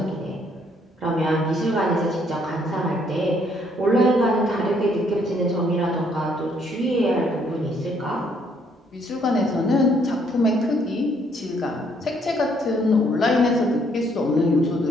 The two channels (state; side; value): normal; both; correlation 0.68